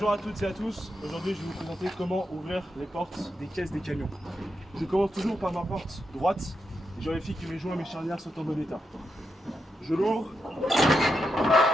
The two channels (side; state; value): both; normal; correlation 0.85